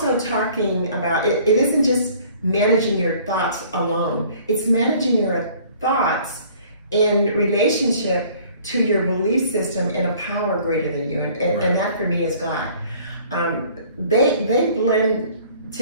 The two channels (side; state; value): both; inverted; correlation -0.54